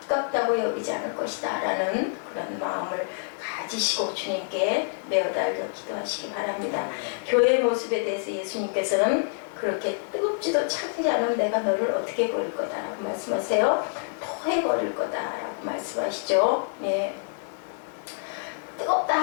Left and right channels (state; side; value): silent; right; 60 dB below the other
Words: 아깝다고 여기지 않을 것이다 라는 그런 마음을 가지시고 주님께 매어달려 기도하시기 바랍니다. 교회의 모습에 대해서 예수님께서는 그렇게 뜨겁지도 차지 않은 내가 너를 어떻게 버릴 거다라고 말씀하세요. 토해버릴 거다라고 말씀하시죠. 예.